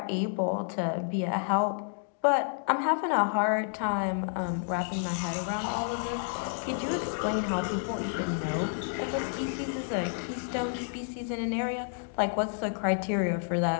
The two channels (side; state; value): right; silent; digital silence